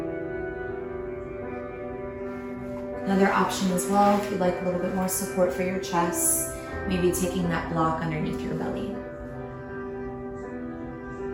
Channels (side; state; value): both; identical; correlation 1.00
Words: Another option as well, if you'd like a little bit more support for your chest, maybe taking that block underneath your belly.